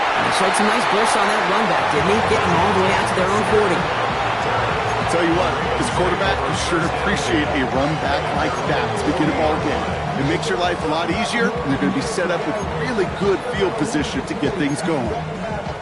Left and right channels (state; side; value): identical; both; correlation 1.00